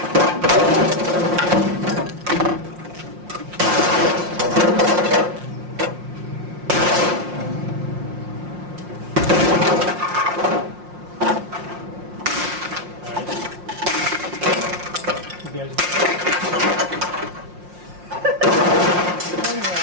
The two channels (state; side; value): late; left; 5.6 ms